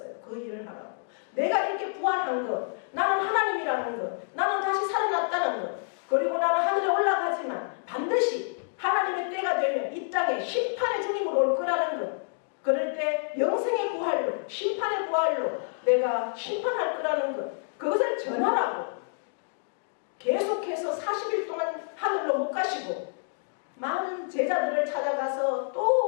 그 일을 하라고. 내가 이렇게 부활한 것, 나는 하나님이라는 것, 나는 다시 살아났다는 것, 그리고 나는 하늘에 올라가지만 반드시 하나님의 때가 되면 이 땅에 심판의 주님으로 올 거라는 것, 그럴 때 영생의 부활로, 심판의 부활로 내가 심판할 거라는 것, 그것을 전하라고 계속해서 40일 동안 하늘로 못 가시고 많은 제자들을 찾아가서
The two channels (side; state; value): right; silent; digital silence